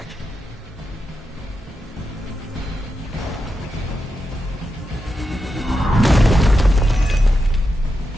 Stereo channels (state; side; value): normal; both; correlation 0.88